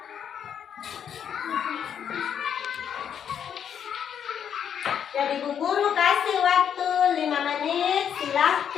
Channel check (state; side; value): quieter; right; 8.5 dB